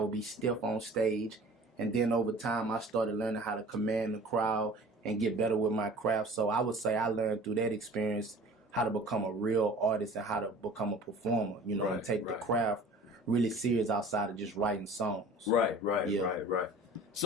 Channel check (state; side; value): normal; both; correlation 0.45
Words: be stiff on stage. And then over time, I started learning how to command the crowd and get better with my craft. So I would say I learned through that experience how to become a real artist and how to become a performer, you know, and take the craft really serious outside of just writing songs. Right.